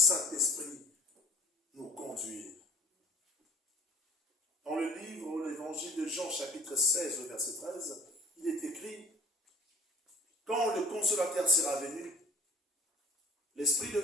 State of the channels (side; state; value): both; normal; correlation 0.47